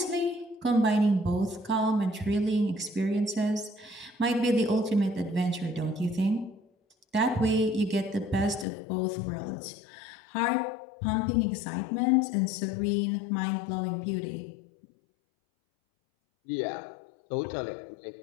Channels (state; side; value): drops out; right; at 8.7 s